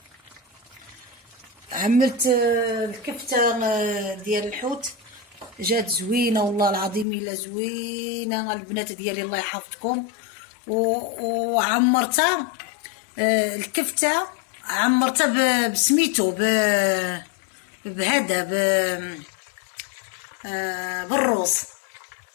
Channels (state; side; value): drops out; right; at 7.1 s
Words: عملت الكفتة ديال الحوت جات زوينة والله العظيم الا زوينة البنات ديالي الله يحفظكم. وعمرتها الكفتة عمرتها بسميتو بهذا بالروز.